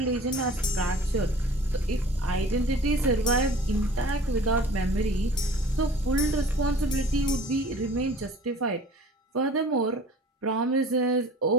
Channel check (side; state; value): both; normal; correlation 0.46